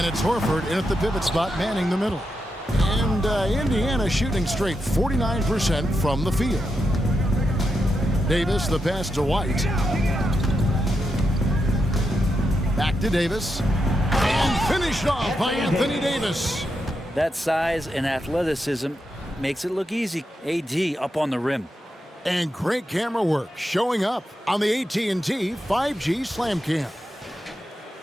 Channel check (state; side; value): normal; both; correlation 0.85